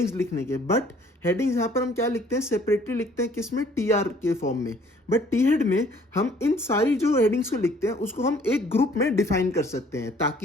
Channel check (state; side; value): normal; both; correlation 0.58